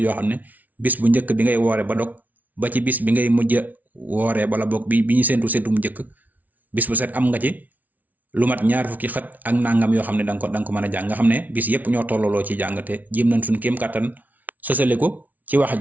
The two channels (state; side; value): late; left; 0.076 ms